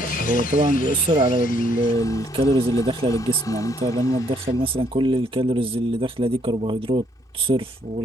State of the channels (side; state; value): both; normal; correlation 0.68